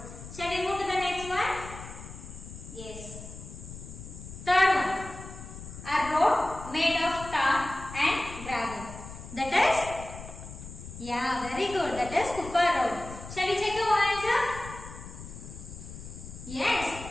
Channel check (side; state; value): left; noise; rumble, 13 dB below the sound